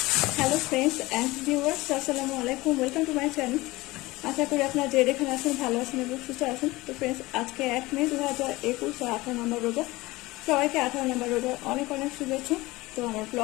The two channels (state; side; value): quieter; right; 20.4 dB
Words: हेलो फ्रेंड्स एंड व्यूअर्स अस्सलामु आलैकुम वेलकम टू माय चैनल। आशा करी আপনারা যে যেখানে আছেন ভালো আছেন এবং সুস্থ আছেন। তো फ्रेंड्स আজকে 1 মে 2021 18 নম্বর রোজা। সবাইকে 18 নম্বর রোজা অনেক অনেক শুভেচ্ছা। তো আমার